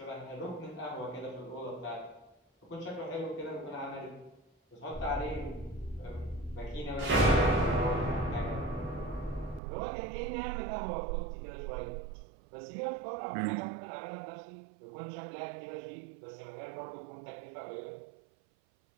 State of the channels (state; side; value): drops out; left; at 9.6 s